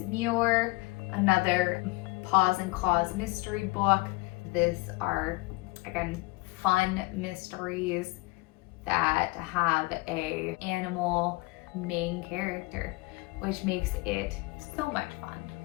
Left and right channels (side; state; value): right; quieter; 23.9 dB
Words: Muir, another Paws and Claws mystery book. These are, again, fun mysteries that have a animal main character, which makes it so much fun.